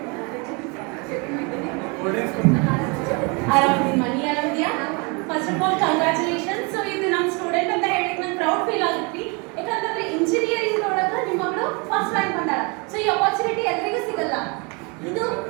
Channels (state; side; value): quieter; left; 30.9 dB